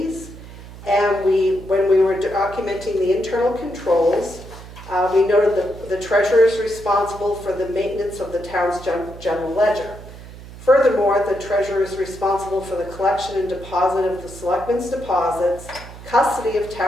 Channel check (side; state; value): right; noise; hum, 16 dB below the sound